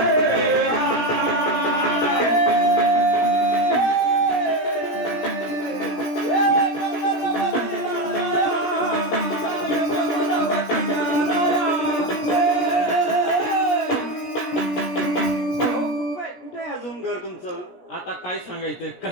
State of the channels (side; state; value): right; late; 17 ms